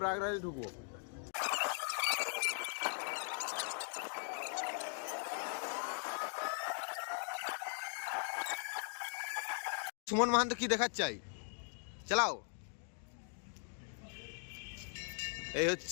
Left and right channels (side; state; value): right; silent; 51 dB below the other